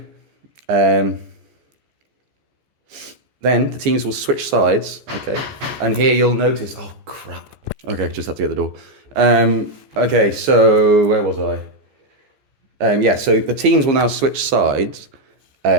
the teams will switch sides, okay? And here you'll notice, oh crap. Okay, just have to get the door. Okay, so where was I? Yeah, so the teams will now switch sides,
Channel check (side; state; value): left; late; 15 ms